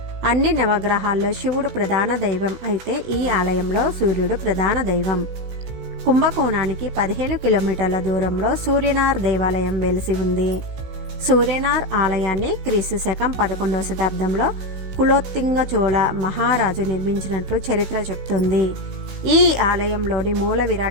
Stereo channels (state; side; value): late; left; 16 ms